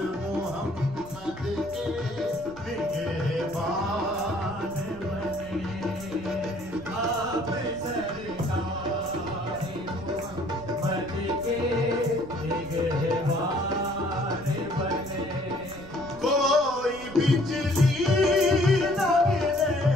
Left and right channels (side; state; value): right; noise; rumble, 18 dB below the sound